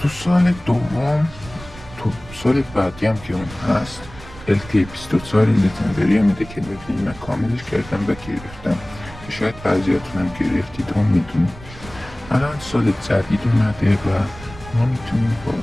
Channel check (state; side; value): noise; right; rumble, 17 dB below the sound